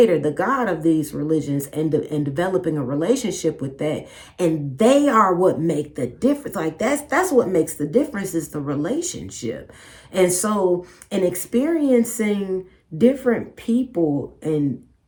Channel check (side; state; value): both; identical; correlation 1.00